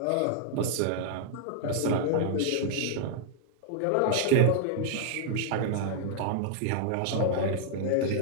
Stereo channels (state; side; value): different; both; correlation -0.01